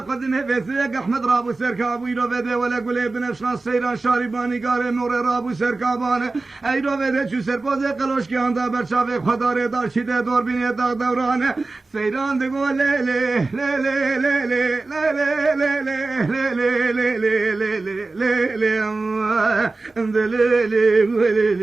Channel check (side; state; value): left; quieter; 3.5 dB